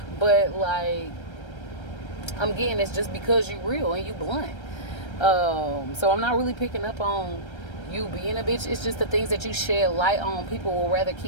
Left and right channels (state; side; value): late; right; 1.3 ms